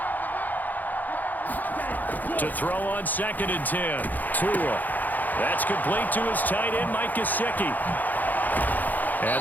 To throw on 2nd and 10. Tua. That's complete to his tight end, Mike Gesicki.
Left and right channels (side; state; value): right; late; 0.083 ms